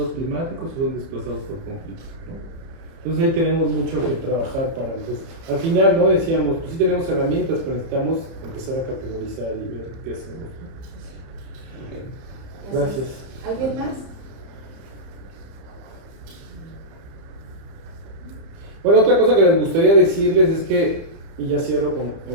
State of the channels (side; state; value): left; late; 30 ms